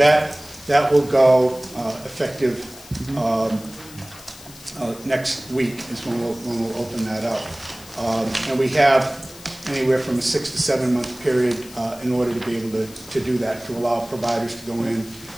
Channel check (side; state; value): left; noise; hiss, 19 dB below the sound